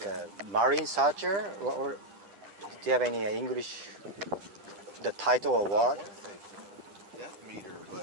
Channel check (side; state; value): left; late; 10 ms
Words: a marine searcher, or do you have any English, the title or I word? want to say depth meter,